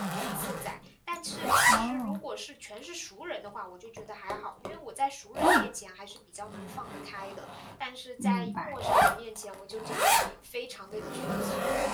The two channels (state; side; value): identical; both; correlation 1.00